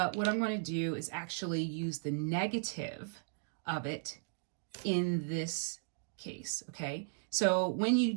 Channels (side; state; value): left; silent; digital silence